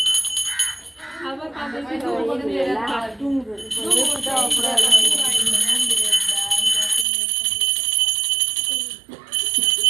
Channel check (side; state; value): left; drops out; at 7.1 s